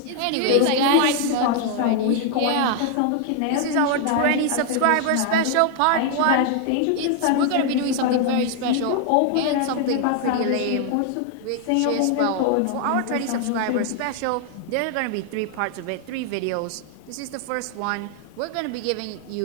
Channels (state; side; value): different; both; correlation 0.00